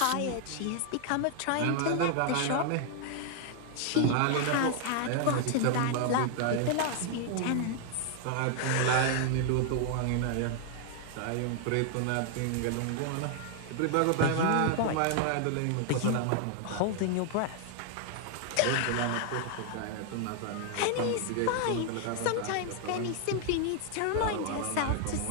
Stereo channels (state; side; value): different; both; correlation 0.00